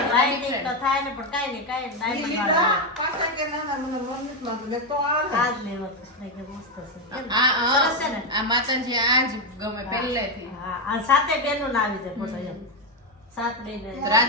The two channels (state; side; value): normal; both; correlation 0.06